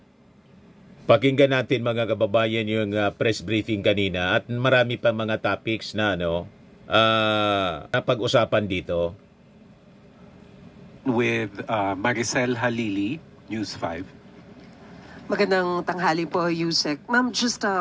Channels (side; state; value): both; identical; correlation 1.00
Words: Pakinggan natin mga kababayan yung press briefing kanina at marami pa mga topics na napag-usapan dito. With Maricel Halili, News 5. Magandang tanghali po, Yusek. Ma'am, just